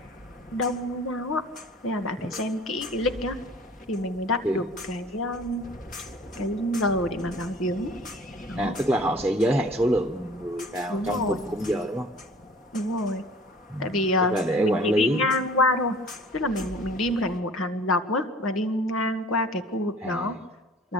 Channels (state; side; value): normal; both; correlation 0.48